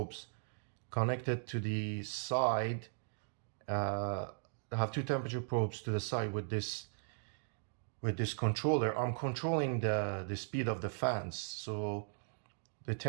connected to the side, I have two temperature probes to the side with this controller. I'm controlling the speed of the fans, so the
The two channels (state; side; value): silent; left; digital silence